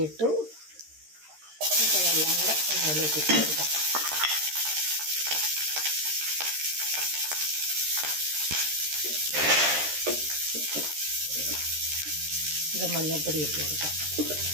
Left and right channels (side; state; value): left; late; 13 ms